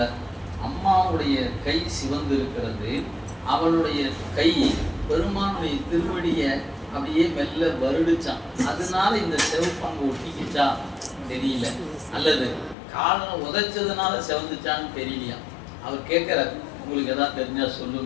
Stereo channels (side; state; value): right; drops out; at 12.8 s